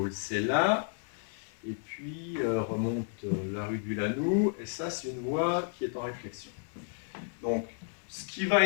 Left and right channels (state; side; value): silent; right; 56 dB below the other